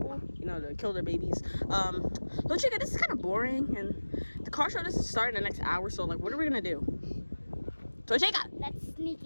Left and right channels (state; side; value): inverted; both; correlation -1.00